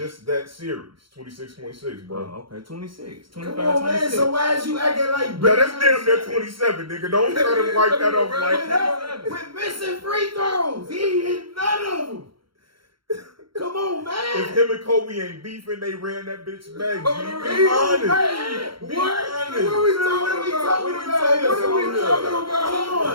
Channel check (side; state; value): left; late; 0.73 ms